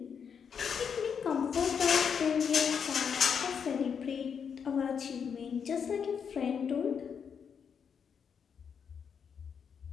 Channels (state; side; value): quieter; right; 6.9 dB